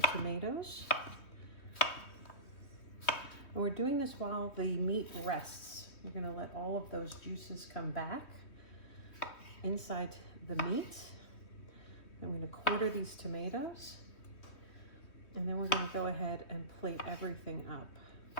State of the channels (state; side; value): late; right; 3.1 ms